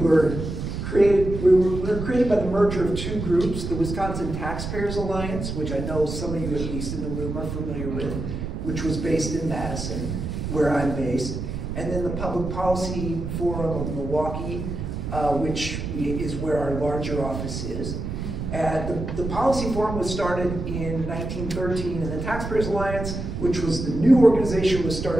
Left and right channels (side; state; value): right; noise; rumble, 5 dB below the sound